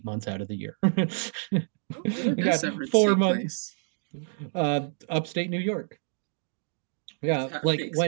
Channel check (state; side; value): silent; left; 57 dB below the other